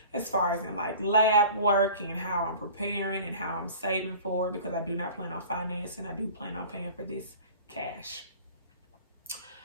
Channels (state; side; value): inverted; both; correlation -0.42